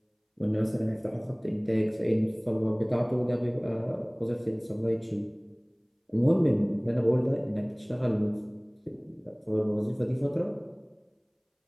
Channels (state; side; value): identical; both; correlation 1.00